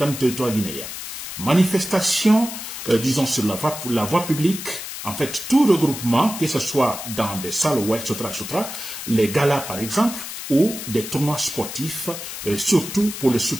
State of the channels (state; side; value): noise; left; hiss, 8 dB below the sound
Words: du territoire guinéen. Manifestation, disons, sur la voie publique, en fait, tout regroupement, que ce soit dans des salles, etc., les galas, par exemple, ou des tournois sportifs, surtout pour le